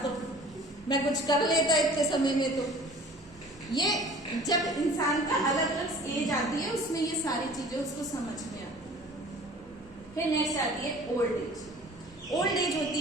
तो मैं कुछ कर लेता इतने समय में। तो ये जब इंसान का अलग अलग एज आती है उसमें ये सारी चीजें उसको समझ में आती है। फिर नेक्स्ट आती है ओल्ड एज। ओल्ड एज होती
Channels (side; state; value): both; normal; correlation 0.46